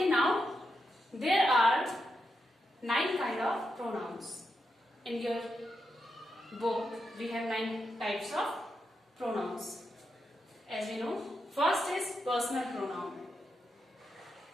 now there are 9 kind of pronouns. In your book we have 9 types of pronouns. As we know, first is personal pronoun,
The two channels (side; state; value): both; normal; correlation 0.85